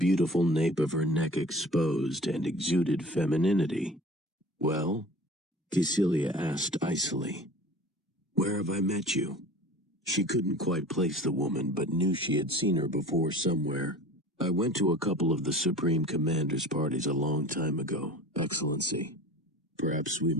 nape of her neck exposed, and exuded femininity. "Well?" Cecilia asked icily. "Where have I met you?" She couldn't quite place the woman, but knew she had seen her before somewhere. "I went to a couple of the Supreme Commander's parties a long time ago, Excellency. Perhaps we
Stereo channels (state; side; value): normal; both; correlation 0.41